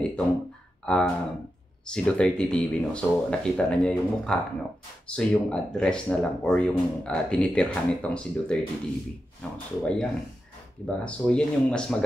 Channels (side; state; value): both; normal; correlation 0.89